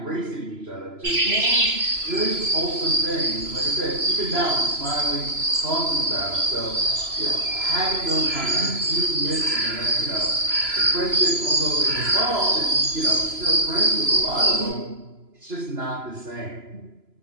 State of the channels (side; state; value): left; late; 3.0 ms